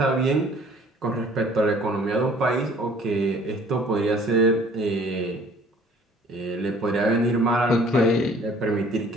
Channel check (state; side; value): normal; both; correlation 0.54